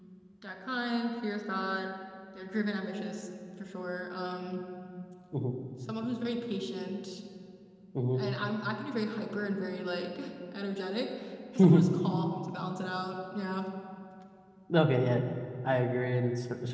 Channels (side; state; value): both; identical; correlation 1.00